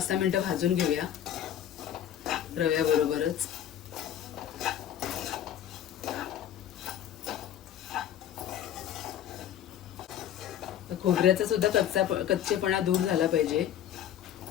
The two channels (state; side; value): quieter; right; 10.7 dB